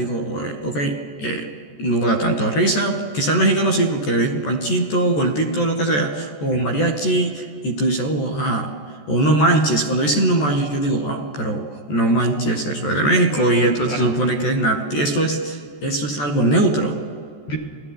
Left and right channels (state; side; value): late; right; 14 ms